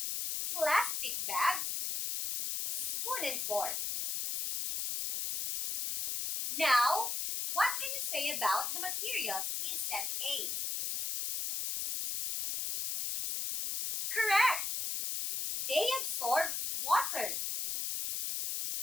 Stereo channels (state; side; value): noise; left; hiss, 2 dB below the sound